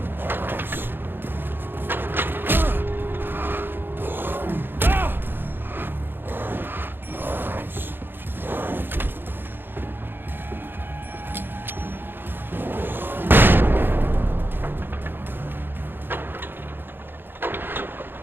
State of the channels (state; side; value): late; left; 0.10 ms